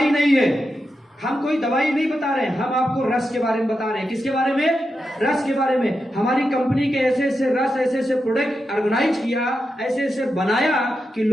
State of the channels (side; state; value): both; normal; correlation 0.88